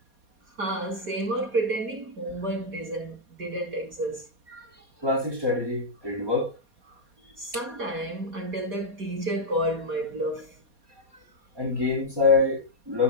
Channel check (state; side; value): late; left; 4.2 ms